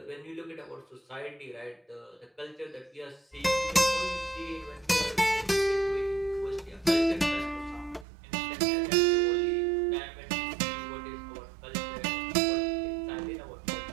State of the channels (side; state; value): left; drops out; at 8.1 s